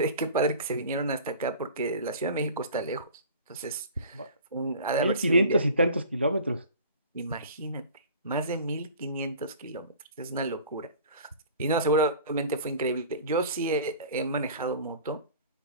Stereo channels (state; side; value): inverted; both; correlation -0.43